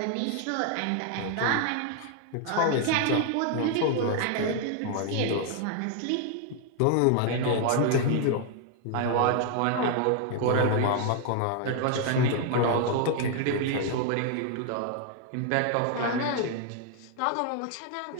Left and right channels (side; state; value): both; different; correlation 0.00